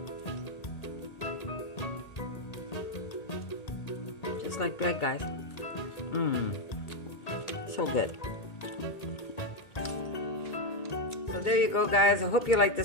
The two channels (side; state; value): right; late; 1.8 ms